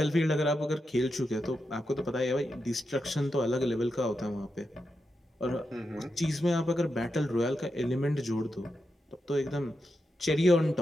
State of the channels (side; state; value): both; normal; correlation 0.87